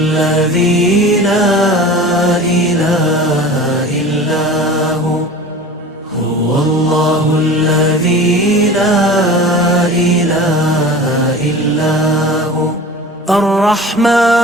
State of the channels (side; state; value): both; normal; correlation 0.37